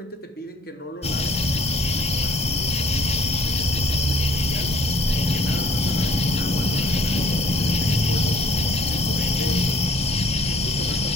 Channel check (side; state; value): both; normal; correlation 0.56